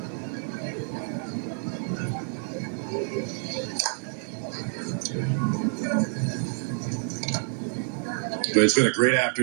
But it's been a great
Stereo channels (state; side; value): silent; left; digital silence